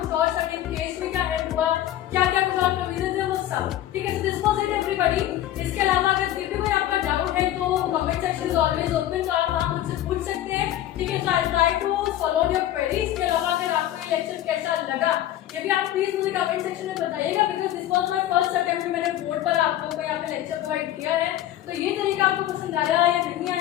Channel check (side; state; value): right; quieter; 12.9 dB